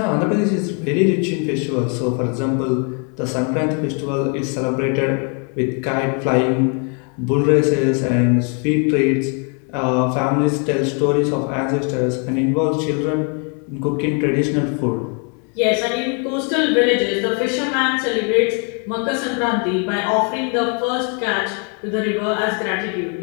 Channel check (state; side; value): quieter; right; 38.6 dB